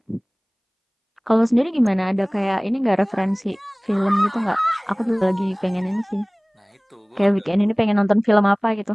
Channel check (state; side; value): identical; both; correlation 1.00